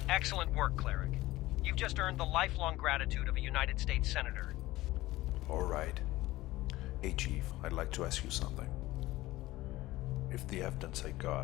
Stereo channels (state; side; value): quieter; right; 17.7 dB